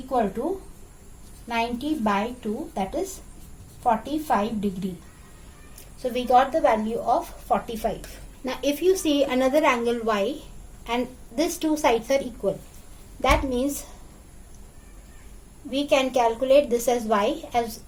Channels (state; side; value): identical; both; correlation 1.00